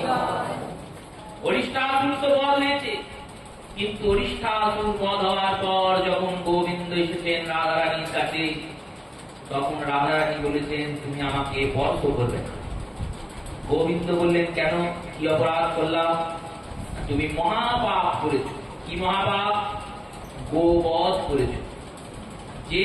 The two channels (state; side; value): identical; both; correlation 1.00